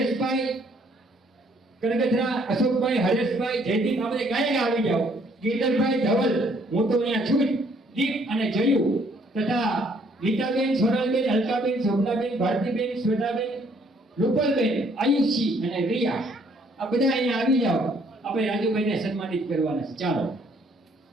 કનગથરા અશોકભાઈ હરેશભાઈ જયદીપ આપણે ગાયક આવી જાઓ ગીરધરભાઈ ધવલ હું તો અહીંયા છું દીપ અને જયુ તથા ગીતાબેન સોનલબેન અલકાબેન શોભનાબેન ભારતીબેન શ્વેતાબેન રૂપલબેન આયુષી અને રિયા આ બધા અહીંયા આવી જાઓ આપણે રાજુભાઈને સન્માનિત કરવાના છે ચાલો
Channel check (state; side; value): normal; both; correlation 0.64